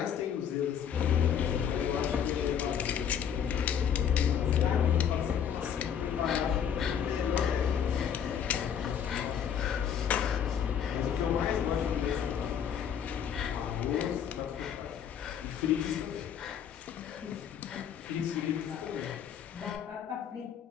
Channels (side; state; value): right; quieter; 8.4 dB